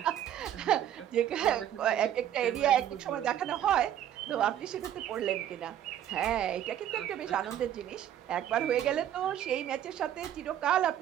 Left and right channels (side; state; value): left; quieter; 10.8 dB